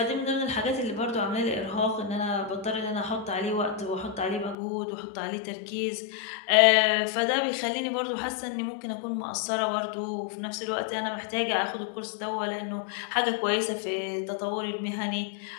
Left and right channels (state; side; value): drops out; right; at 4.5 s